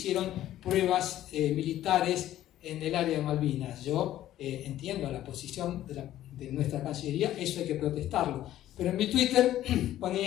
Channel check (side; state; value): right; quieter; 13.2 dB